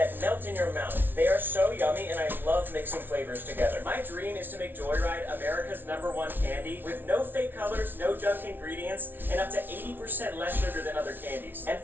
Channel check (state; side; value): late; left; 0.096 ms